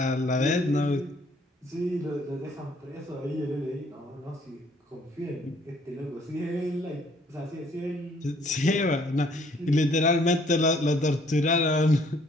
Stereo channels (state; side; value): normal; both; correlation 0.62